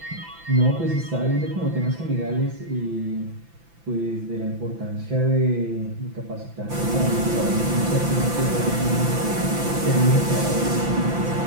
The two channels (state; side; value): late; left; 5.9 ms